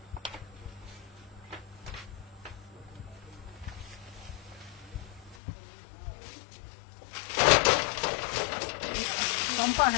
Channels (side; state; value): right; drops out; at 5.4 s